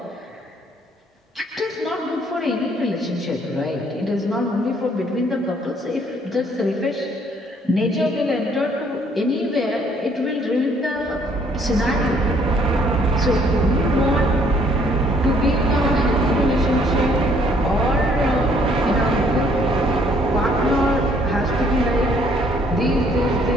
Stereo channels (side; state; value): both; normal; correlation 0.63